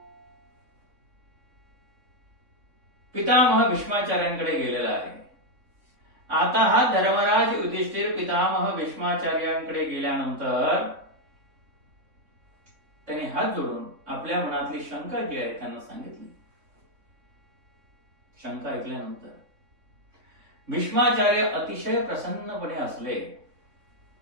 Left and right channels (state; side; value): late; left; 3.6 ms